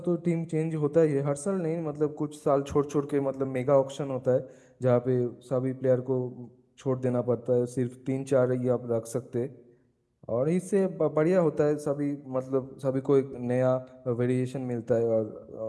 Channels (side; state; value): both; identical; correlation 1.00